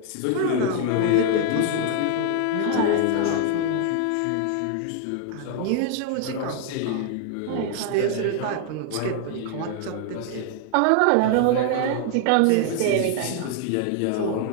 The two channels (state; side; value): different; both; correlation 0.00